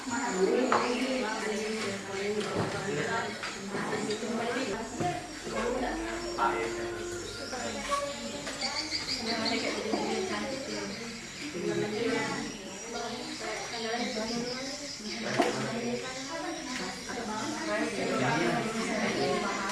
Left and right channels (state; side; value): identical; both; correlation 1.00